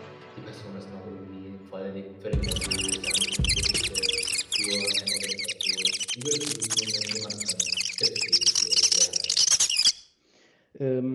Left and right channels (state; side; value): identical; both; correlation 1.00